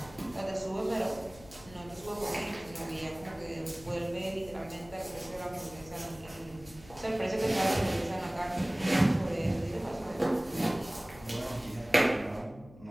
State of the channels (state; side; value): noise; left; hum, 20 dB below the sound